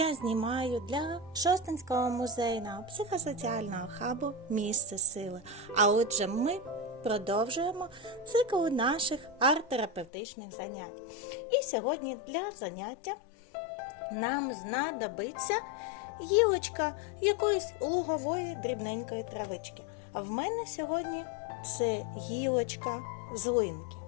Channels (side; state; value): right; drops out; at 10.1 s